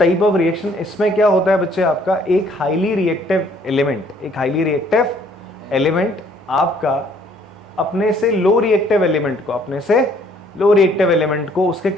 of reaction. इसमें क्या होता है बच्चे, आपका एक हाईली रिएक्टिव एलिमेंट आपका अपने से लो रिएक्टिव एलिमेंट को उसके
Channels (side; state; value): both; normal; correlation 0.62